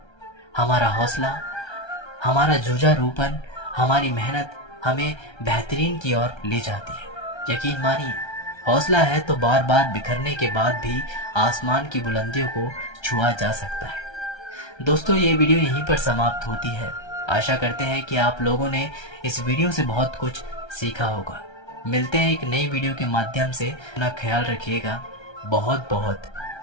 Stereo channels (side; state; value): right; late; 1.3 ms